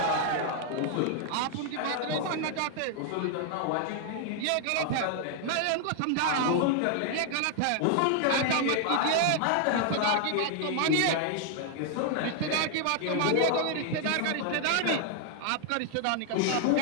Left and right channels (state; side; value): different; both; correlation 0.00